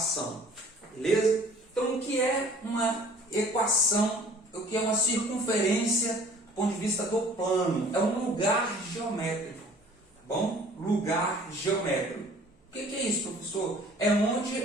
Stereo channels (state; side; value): normal; both; correlation 0.52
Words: Beleza? Então, o que é uma equação, o que é uma circunferência do ponto de vista do plano? É um lugar geométrico. Bom, lugar geométrico. O que é isso, professor? É